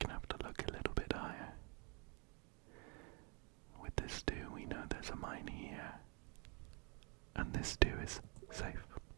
have to look a little bit higher. With this 2, we know there's a mine here, and this 2 is safe.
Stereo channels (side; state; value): left; quieter; 32.8 dB